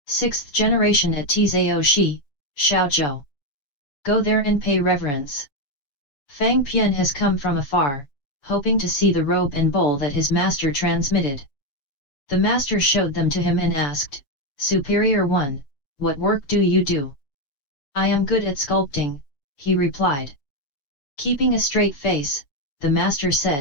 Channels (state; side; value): late; right; 7.0 ms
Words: 6th generation at Tzao Shi, Shaozhou. Go there and pay reverence.' Fang Pian has come from afar, hoping to see the robe and bowl that his master transmitted. The master showed them to him and asked, 'Superior one, what work do you do?' 'I am good at sculpting,' he replied. Keeping a straight face, the master